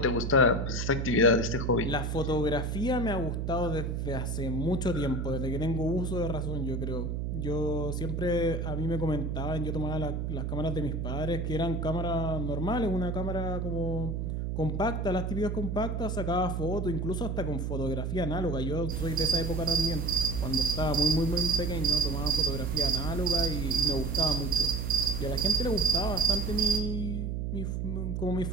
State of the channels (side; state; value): right; noise; hum, 2 dB below the sound